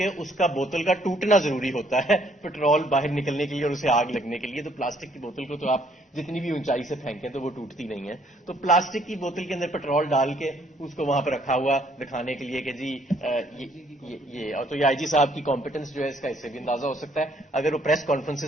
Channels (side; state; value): both; normal; correlation 0.65